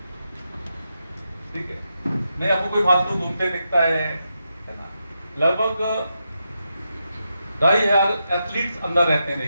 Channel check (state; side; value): inverted; both; correlation -0.86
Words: ठीक है, नहीं आपको कोई फालतू घूमते दिखता है ना, लगभग 2,500 एथलीट्स अंदर रहते हैं,